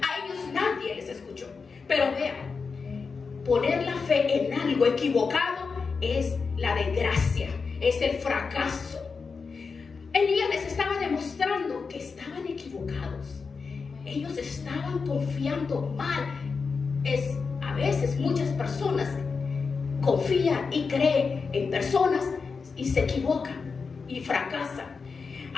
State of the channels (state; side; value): quieter; right; 5.0 dB